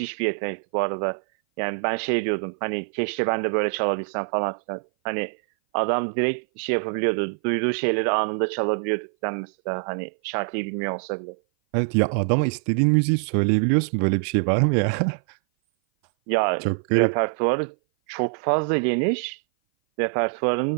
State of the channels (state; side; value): silent; left; 57 dB below the other